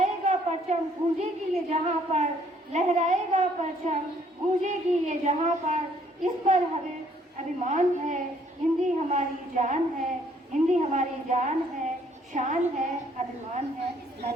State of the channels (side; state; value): both; normal; correlation 0.64